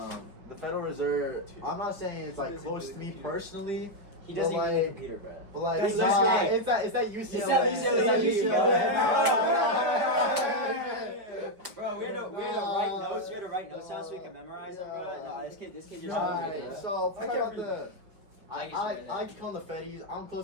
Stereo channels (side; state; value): left; late; 5.2 ms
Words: Federal Reserve. I'm not saying it's like He doesn't close do to the me computer. personally. He doesn't But even need a like- computer, bro. But like, That's it's that UCLA. It's that UCLA. Bro, we had to write notes. We had to write notes down so we could memorize them, bro. No, this kid just Alright, so I talk can't about read the. I I can see like to call them the Feddies. I'm